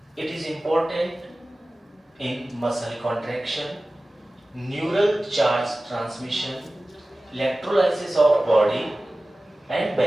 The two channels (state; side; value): normal; both; correlation 0.97